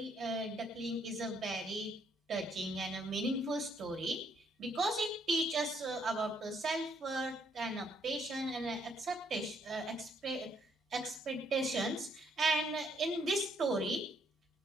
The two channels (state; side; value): normal; both; correlation 0.70